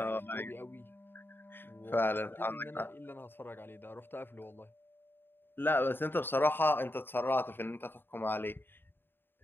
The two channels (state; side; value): late; right; 0.10 ms